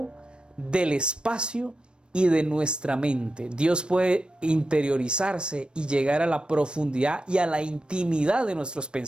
del espacio y de nuestra mente. Dios puede interiorizarse y llegar a la profundidad y a la intimidad de nuestros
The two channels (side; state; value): left; late; 0.054 ms